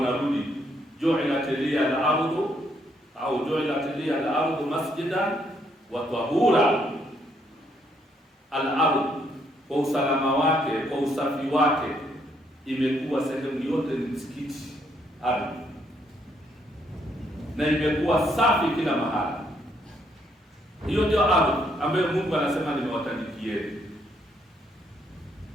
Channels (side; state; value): both; normal; correlation 0.72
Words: ju'ilat liya al-ardu au ju'ilat liya al-ardu masjidan wa tahura. Al-ardu kwa usalama wake, kwa usafi wake, imekuwa sehemu yote ni msikiti ardhi, na imekuwa safi kila mahali. Hiyo ndio ardhi ambayo Mungu anasema nimewatandikieni,